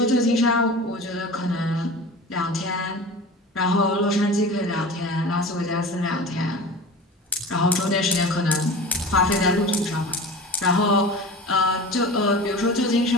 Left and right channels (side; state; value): both; normal; correlation 0.35